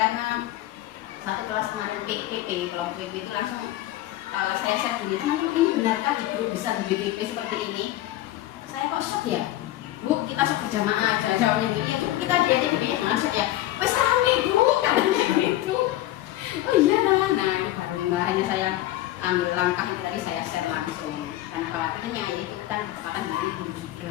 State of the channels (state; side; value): quieter; right; 15.1 dB